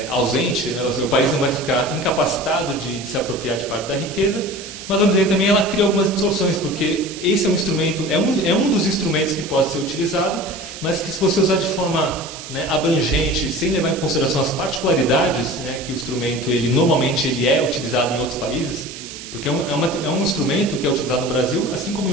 ausente, né, o país não vai ficar incapacitado de se apropriar de parte da riqueza, mas vamos dizer também ela cria algumas distorções, porque esse é um instrumento, é um dos instrumentos que pode ser utilizado, mas que se você usar de forma, né, abrangente, sem levar em consideração as particularidades, né, que o instrumento normalmente é utilizado em outros países, porque é um instrumento que é utilizado no Brasil, assim como em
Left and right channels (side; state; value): right; noise; hiss, 12 dB below the sound